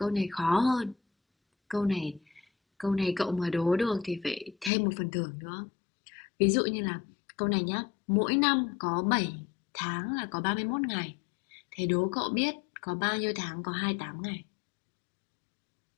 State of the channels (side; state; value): right; drops out; at 4.7 s